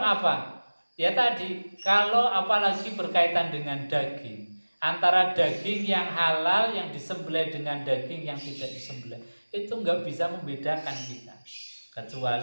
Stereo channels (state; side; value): inverted; both; correlation -1.00